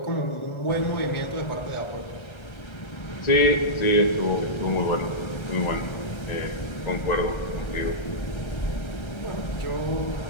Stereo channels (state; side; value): late; right; 1.4 ms